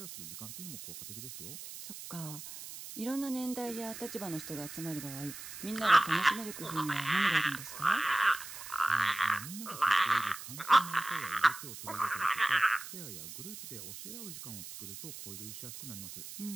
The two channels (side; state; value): right; noise; hiss, 11 dB below the sound